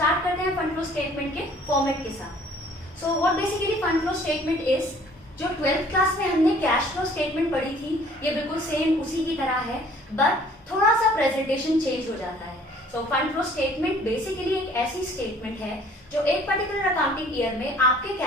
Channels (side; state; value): both; normal; correlation 0.55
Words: करते हैं फंड फ्लो स्टेटमेंट के फॉर्मेट के साथ. So what basically fund flow statement is, जो 12th क्लास में हमने कैश फ्लो स्टेटमेंट पढ़ी थी ये बिल्कुल सेम उसी की तरह है, बट थोड़ा सा प्रेजेंटेशन चेंज हो जाता है. So fund flow statement basically एक ऐसी स्टेटमेंट है जो एक पर्टिकुलर अकाउंटिंग ईयर में आपके